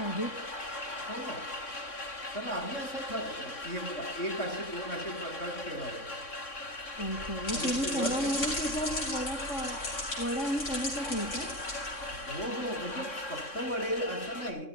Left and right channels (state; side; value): late; right; 3.6 ms